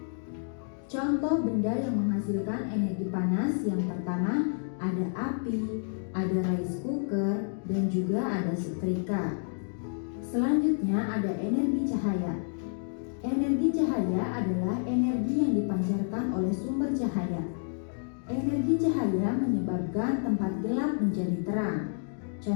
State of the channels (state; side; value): silent; right; digital silence